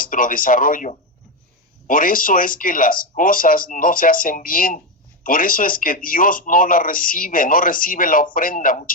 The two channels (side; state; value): both; normal; correlation 0.10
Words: desarrollo. Por eso es que las cosas no se hacen bien. Por eso es que Dios no recibe la ofrenda